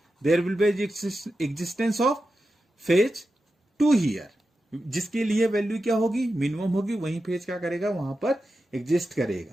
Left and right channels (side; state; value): both; normal; correlation 0.91